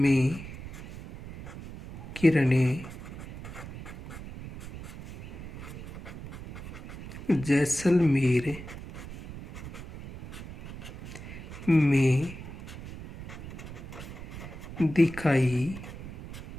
किरणें जैसलमेर में दिखाई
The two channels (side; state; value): right; noise; rumble, 12 dB below the sound